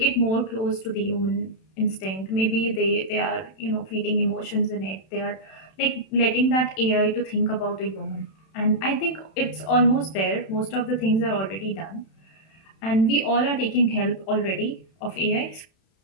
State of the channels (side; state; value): right; late; 31 ms